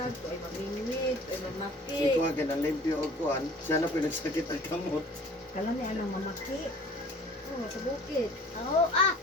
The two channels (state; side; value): normal; both; correlation 0.48